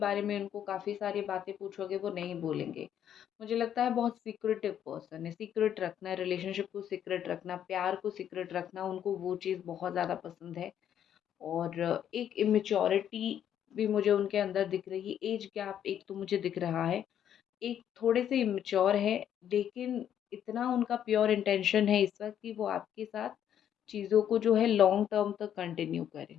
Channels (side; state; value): right; quieter; 9.8 dB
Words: में उनको काफ़ी सारी बातें पूछोगे वो नहीं बोलेंगे। मुझे लगता है बहुत सीक्रेटिव पर्सन है। सीक्रेट रखना, रिलेशनशिप को सीक्रेट रखना, प्यार को सीक्रेट रखना, उनको वो चीज़ बहुत ज़्यादा पसंद है। और एक इमेच्योरिटी भी मुझे उनके अंदर दिख रही है। एज गैप एक तो मुझे दिख रहा है, एक थोड़े से इमेच्योर है, लेकिन इतना उनका प्योर इंटेंशन है इस वक्त कि वो आपके साथ चीज़ों को जो है लॉन्ग टर्म तक कंटिन्यू करें।